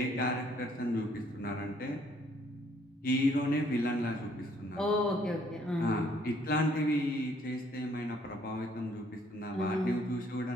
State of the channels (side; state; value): both; normal; correlation 0.64